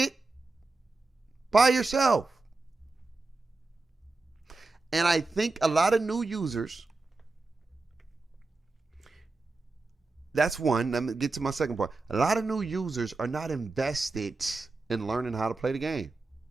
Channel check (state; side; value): quieter; left; 3.5 dB